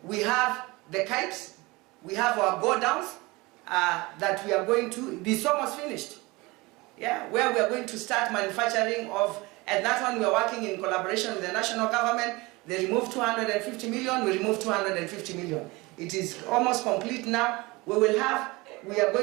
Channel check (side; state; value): left; quieter; 23.1 dB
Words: we have the kites, we have our go-downs that we are going to, it's almost finished. Yeah, where we are going to start manufacturing of, and that one we are working in collaboration with the national government. They removed 250 million, we removed 250 million. It is almost complete now. We are